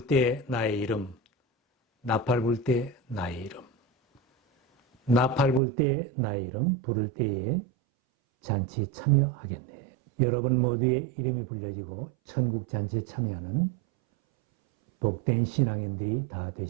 때 나의 이름, 나팔 불 때 나의 이름, 나팔 불 때 나의 이름 부를 때에 잔치 참여하겠네. 여러분 모두의 이름이 불려지고 천국 잔치에 참여하는 복된 신앙인들이 다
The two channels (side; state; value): left; drops out; at 5.6 s